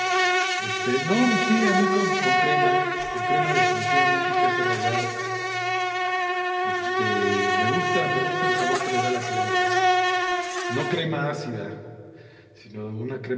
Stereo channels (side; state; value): both; identical; correlation 1.00